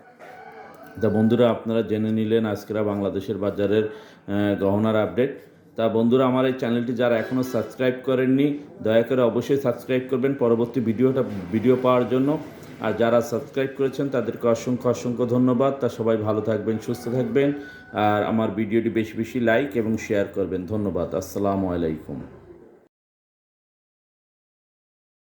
তা বন্ধুরা, আপনারা জেনে নিলেন আজকের বাংলাদেশের বাজারের গহনার আপডেট। তা বন্ধুরা, আমার এই চ্যানেলটি যারা এখনও সাবস্ক্রাইব করেননি, দয়া করে অবশ্যই সাবস্ক্রাইব করবেন পরবর্তী ভিডিও পাওয়ার জন্য। আর যারা সাবস্ক্রাইব করেছেন তাদেরকে অসংখ্য ধন্যবাদ। তা সবাই ভালো থাকবেন, সুস্থ থাকবেন আর আমার ভিডিওটি বেশি বেশি লাইক এবং শেয়ার করবেন। ধন্যবাদ। আসসালামু আলাইকুম।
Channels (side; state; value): both; identical; correlation 1.00